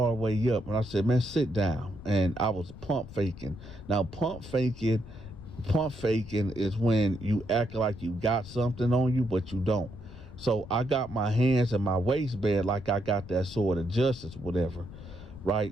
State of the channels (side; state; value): left; noise; rumble, 15 dB below the sound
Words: the way up, and I said, man, sit down. And I was pump faking. Now, pump faking is when you act like you got something on you, but you don't. So I got my hands in my waistband like I got that sword of justice, whatever,